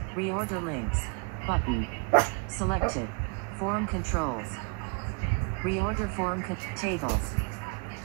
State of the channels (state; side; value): quieter; left; 35.9 dB